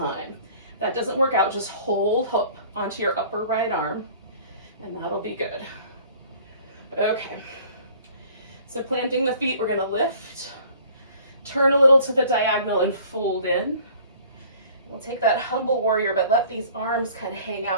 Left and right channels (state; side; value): inverted; both; correlation -0.51